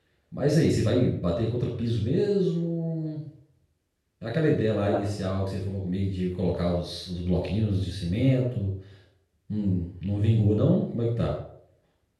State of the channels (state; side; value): identical; both; correlation 1.00